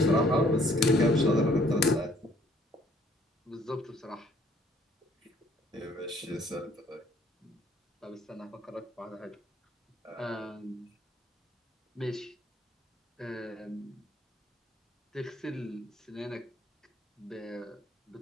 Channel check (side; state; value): both; normal; correlation 0.61